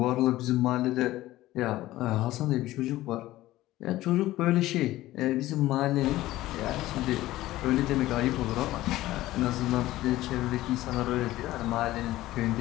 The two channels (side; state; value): right; quieter; 16.2 dB